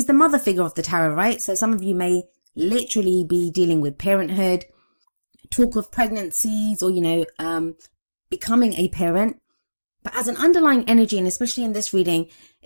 the mother figure of the tarot, right? So some of you may literally be dealing with parenthood, talk of pregnancies, or, becoming a parent. But as an underlying energy, and especially in this reading,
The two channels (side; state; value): both; inverted; correlation -1.00